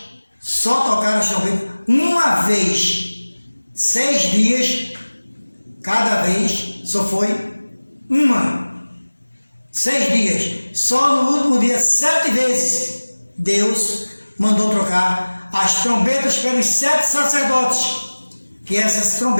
só tocaram as trombetas uma vez. 6 dias, cada vez só foi uma. 6 dias. Só no último dia, 7 vezes, Deus mandou trocar as trombetas pelos 7 sacerdotes. Que essas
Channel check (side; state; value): both; inverted; correlation -1.00